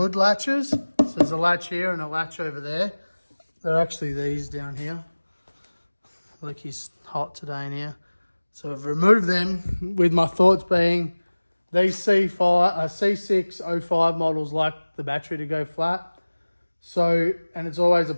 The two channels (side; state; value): both; inverted; correlation -1.00